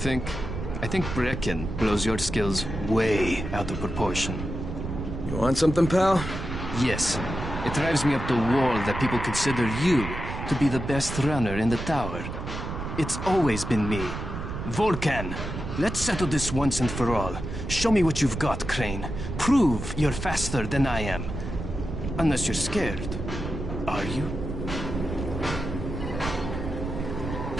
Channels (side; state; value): right; noise; rumble, 6 dB below the sound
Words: I think Brecken blows your skills way out of proportion. You want something, pal? Yes. It drives me up the wall that people consider you to be the best runner in the tower. It's always been me. Volkan, let's settle this once and for all. Show me what you've got, Crane. Prove you're faster than I am. Unless you're scared. Are you?